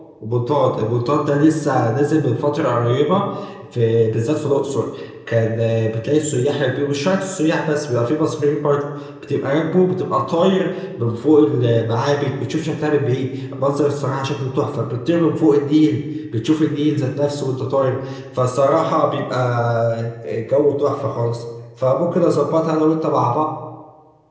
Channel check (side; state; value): both; identical; correlation 1.00